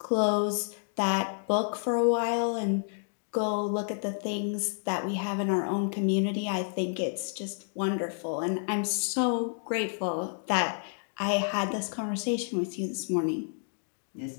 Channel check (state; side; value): silent; right; digital silence